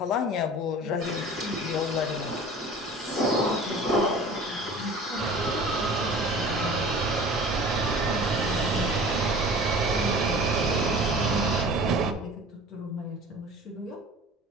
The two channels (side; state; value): both; normal; correlation 0.42